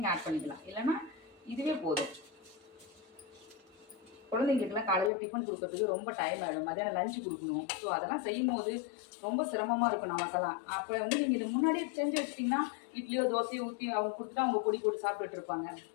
ஆட் பண்ணிக்கலாம், இல்லைன்னா இதுவே போதும். குழந்தைங்களுக்குலாம் காலையில் டிஃபன் கொடுக்கறதுக்கு ரொம்ப டைம் ஆகிடும், மத்தியானம் லஞ்சு கொடுக்கணும். ஸோ அதெல்லாம் செய்யும் போது ரொம்ப சிரமமாக இருக்கும் நமக்கெல்லாம். அப்போ வந்து நீங்கள் இதை முன்னாடியே செஞ்சு வச்சிட்டிங்கன்னா இட்லியோ தோசையோ ஊற்றி அவங்க கொடுத்துட்டு அவங்க பொடி போட்டு சாப்பிட்டுட்டு இருப்பாங்க.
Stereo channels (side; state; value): right; drops out; at 5.1 s